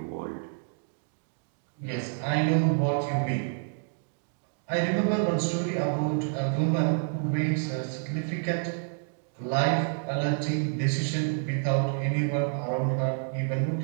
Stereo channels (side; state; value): left; silent; digital silence